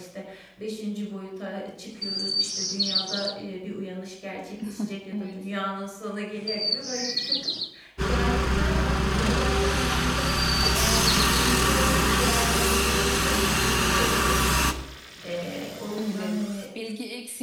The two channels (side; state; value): both; identical; correlation 1.00